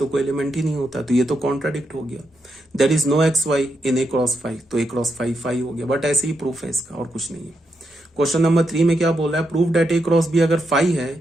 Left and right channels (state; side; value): normal; both; correlation 0.82